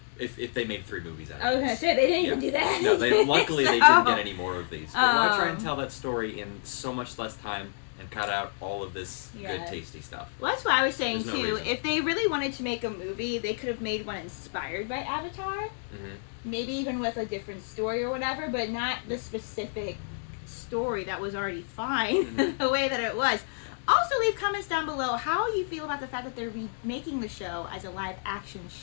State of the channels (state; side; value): silent; right; digital silence